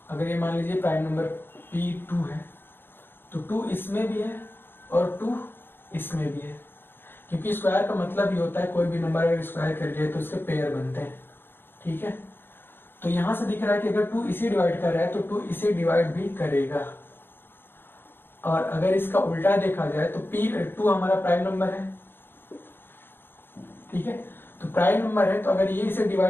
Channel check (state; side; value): late; right; 0.10 ms